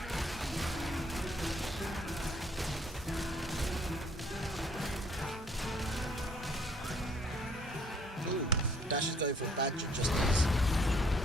Ooh, Dash is going for a badger just as...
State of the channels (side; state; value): both; normal; correlation 0.62